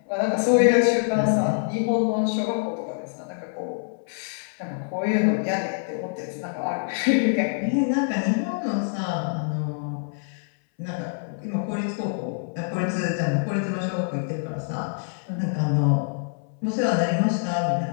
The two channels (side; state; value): right; silent; 61 dB below the other